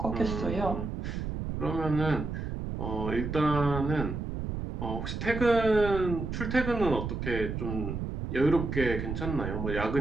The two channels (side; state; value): right; noise; rumble, 4 dB below the sound